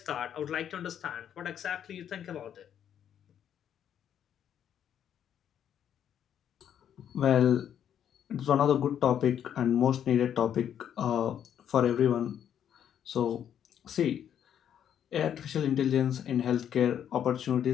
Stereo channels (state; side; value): quieter; right; 9.5 dB